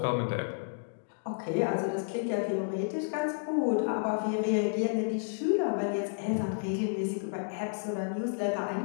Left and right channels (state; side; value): silent; right; digital silence